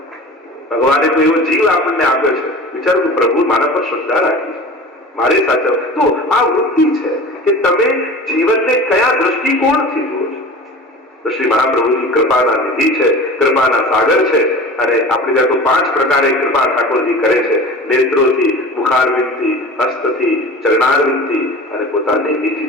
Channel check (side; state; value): both; normal; correlation 0.37